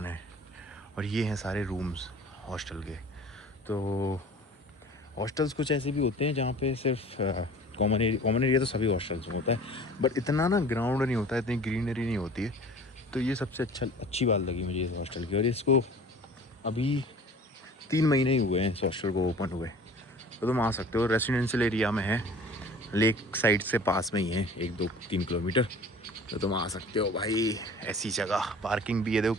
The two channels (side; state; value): both; normal; correlation 0.44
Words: है, और ये हैं सारे रूम्स हॉस्टल के। तो हॉस्टल्स कुछ ऐसे भी होते हैं जहाँ पे सिर्फ कॉमन एरिया तो सभी हॉस्टल्स में होता है, बट इतना ना ग्राउंड नहीं होता है, इतनी ग्रीनरी नहीं होती है। तो ये सबसे अच्छी बात लगी मुझे इस हॉस्टल की। और इसको अभी 3 महीने ही हुए हैं इस हॉस्टल को ओपन हुए, तो तुम आ सकते हो। रेसिडेंशियल एरिया में है, लेक साइड से पास में ही है, 1-2-3 किलोमीटर, तो तुम आ सकते हो भाई। ऐसी जगह पार्किंग भी है, देखो